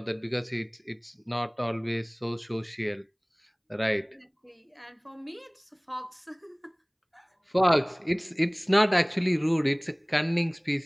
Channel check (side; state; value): both; identical; correlation 1.00